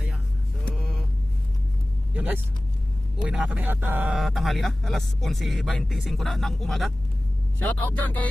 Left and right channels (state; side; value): normal; both; correlation 0.97